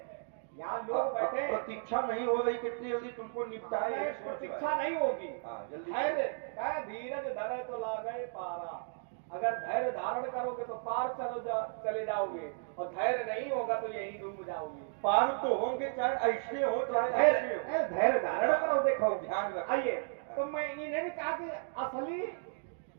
यहाँ लोग बैठे, प्रतीक्षा नहीं हो रही, कितनी जल्दी तुमको निपटाए। प्रतीक्षा नहीं होगी। जल्दी धैर्य धीरज धरे तो लागे पारा। अगर धैर्य धारण करोगे तो पार चले जाओगे, और धैर्य नहीं होगा तो यही डूब जाओगे। पार तो होंगे, चाहे ऐसे हो चाहे ऐसे हो। धैर्य धारण करो। देखो ध्यान रखो। आइए, तो मैं इन्हें भी कहा कि असली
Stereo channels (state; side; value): silent; left; digital silence